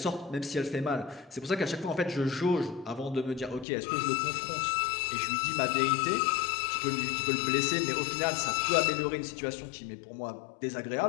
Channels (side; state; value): right; drops out; at 3.7 s